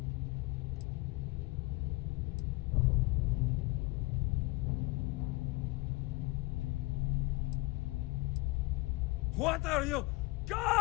What are you?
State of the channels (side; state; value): right; quieter; 23.1 dB